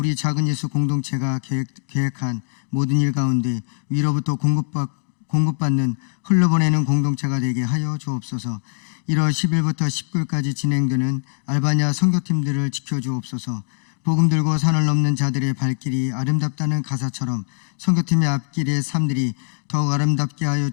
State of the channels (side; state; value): right; silent; digital silence